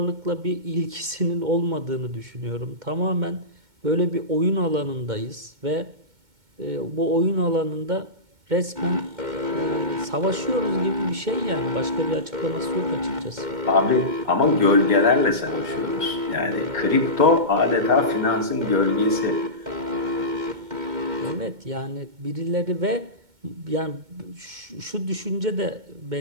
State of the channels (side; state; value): left; late; 2.2 ms